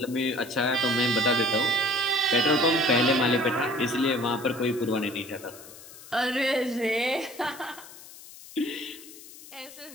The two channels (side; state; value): left; noise; hiss, 18 dB below the sound